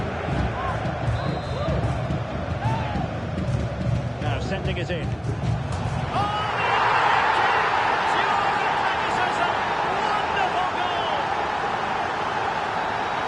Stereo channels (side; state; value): both; identical; correlation 1.00